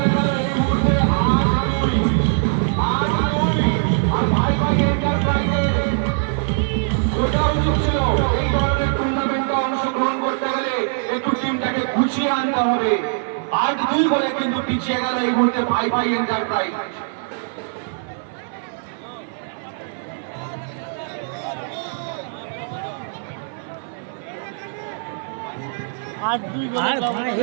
গেল এই মুহূর্তে 8-2 আর ভাই এন্টারপ্রাইজের ওটা উচিত ছিল এই ধরনের টুর্নামেন্টে অংশগ্রহণ করতে গেলে একটু টিমটাকে গুছিয়ে আনতে হবে। 8-2 বলে কিন্তু পিছিয়ে গেল এই মুহূর্তে ভাই এন্টারপ্রাইজ। 8-2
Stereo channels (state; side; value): silent; left; 58 dB below the other